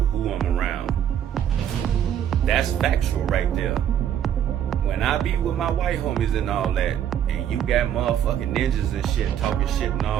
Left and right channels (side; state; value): left; quieter; 9.9 dB